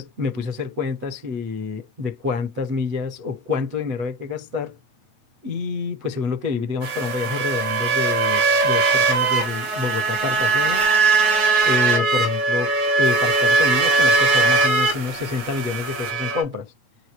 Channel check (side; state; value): left; late; 9.3 ms